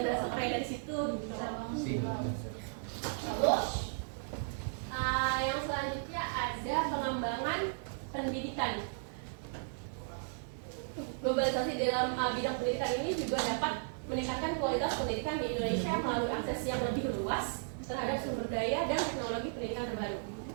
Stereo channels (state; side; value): silent; left; digital silence